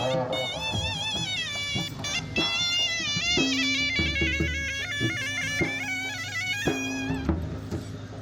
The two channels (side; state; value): both; identical; correlation 1.00